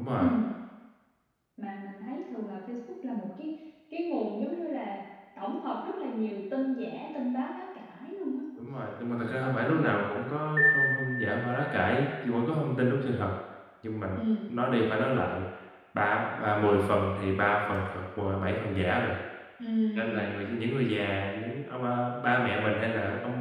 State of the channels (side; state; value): both; identical; correlation 1.00